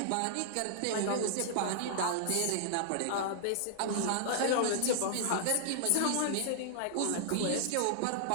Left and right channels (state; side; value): different; both; correlation -0.01